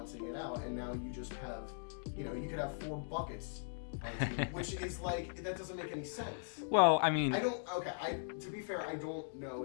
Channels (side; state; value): right; silent; digital silence